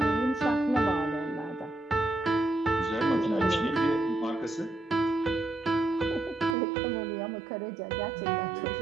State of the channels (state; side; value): drops out; left; at 6.6 s